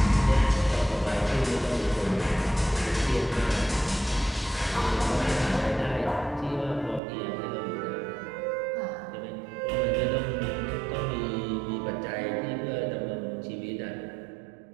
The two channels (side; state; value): left; drops out; at 7.0 s